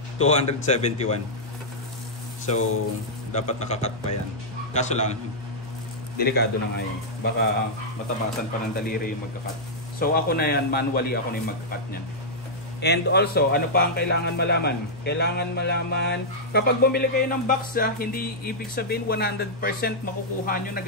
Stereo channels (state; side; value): normal; both; correlation -0.08